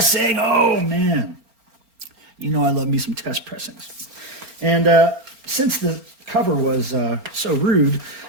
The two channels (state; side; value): late; left; 4.4 ms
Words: Oh, man. You know I love me some test pressings. And since the cover was so rude,